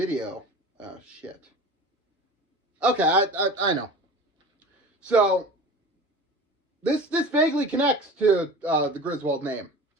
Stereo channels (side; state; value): both; normal; correlation 0.36